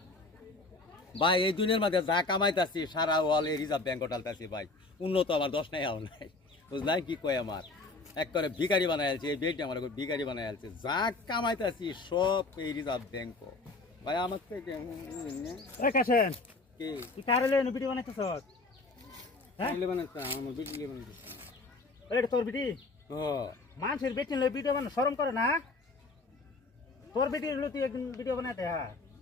ভাই এই দুনিয়ার মধ্যে যা কামাইতেছি সারা ওয়াল এই রিজার্ভ ব্যাংক টালতেছি ভাই উন্নত আমার দশ নাই আও নাই বুঝলাই কি কয় আমার এক করে ভিখারি বানাই আলছে এই বেডটি আমার ভিখারি বানাই আলছে যা কামাইতেছি সব এই রিজার্ভ ব্যাংক ভাই আমার থেকে কাছেন কি তুই কারে লইন ভিডিও বানাইতেছ হ্যাঁ ভিডিও বানাইতাম আমার ভিডিও বানাইতেছি এটা তোর ভিডি ও মানুষের বেটি লই ভিডিও বানা শরম করে না তোর বেটি লই তুই একদিন ভিডিও বানাইতে হ্যাঁ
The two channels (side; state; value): right; quieter; 3.4 dB